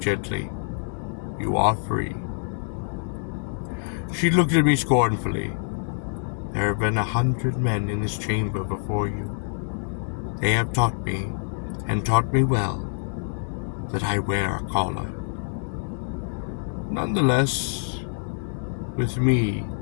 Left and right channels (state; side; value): silent; right; digital silence